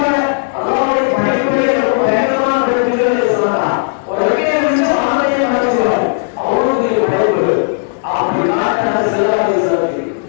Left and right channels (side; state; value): right; silent; digital silence